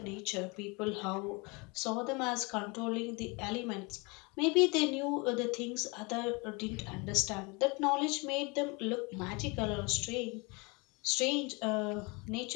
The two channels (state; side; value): quieter; right; 28.6 dB